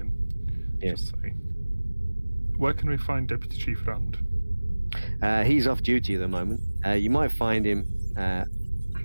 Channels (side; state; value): both; inverted; correlation -1.00